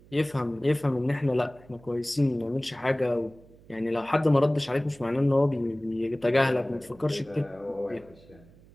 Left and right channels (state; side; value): noise; right; hum, 25 dB below the sound